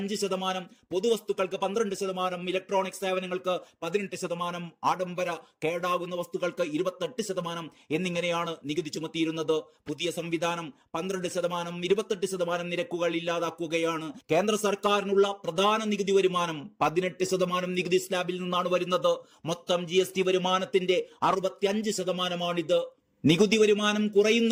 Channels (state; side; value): identical; both; correlation 1.00